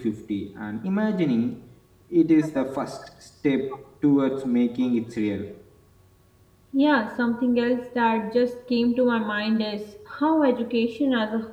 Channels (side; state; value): both; identical; correlation 1.00